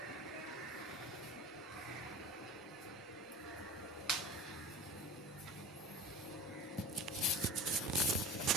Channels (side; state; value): both; normal; correlation 0.35